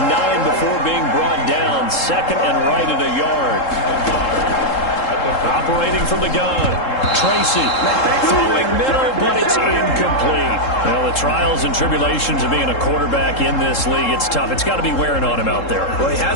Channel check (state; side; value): late; right; 3.7 ms